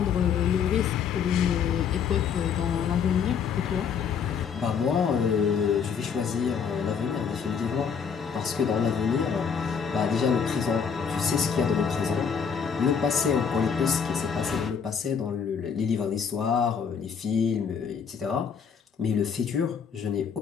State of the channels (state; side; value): quieter; right; 6.7 dB